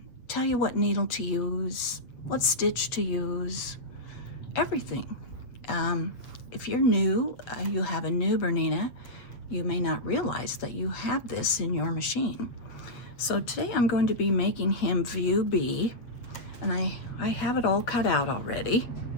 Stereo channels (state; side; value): late; right; 8.2 ms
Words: tell you what needle to use, what stitch to use, everything. If you're new, you have a new Bernina, you may not realize that you have this in your machine. So today I'm going to be making him view B, and I have it all cut out already.